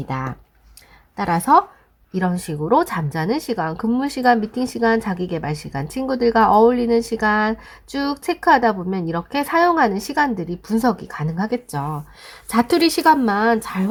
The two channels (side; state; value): both; identical; correlation 1.00